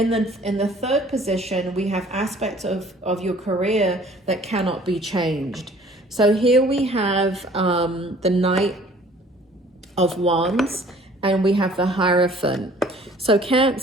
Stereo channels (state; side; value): normal; both; correlation 0.53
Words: the third position, we have aspects of your career that cannot be changed. So here we have the Knight of Wands, and we have the Hierophant. So